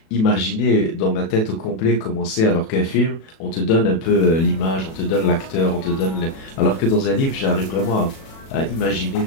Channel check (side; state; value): right; late; 37 ms